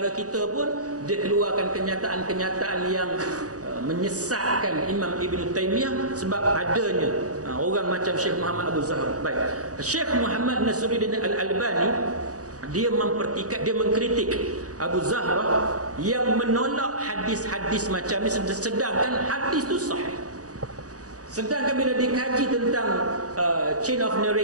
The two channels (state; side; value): late; left; 0.67 ms